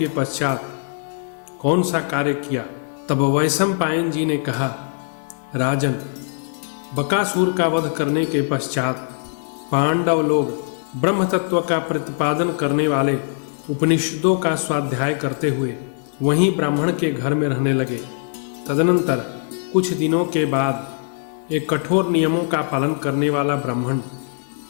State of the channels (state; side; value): silent; right; digital silence